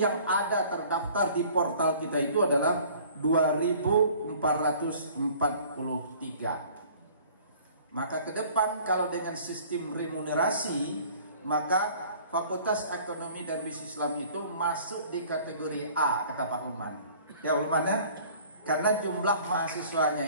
yang ada terdaftar di portal kita itu adalah 2.443. Maka ke depan kalau dengan sistem remunerasi, maka Fakultas Ekonomi dan Bisnis Islam itu masuk di kategori A, kata Pak Ulman. Ya Ulman ya, karena jumlah mahasiswanya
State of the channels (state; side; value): inverted; both; correlation -0.51